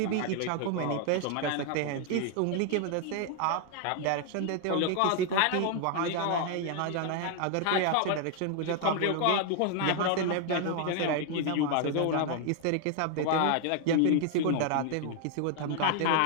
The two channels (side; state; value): both; different; correlation 0.00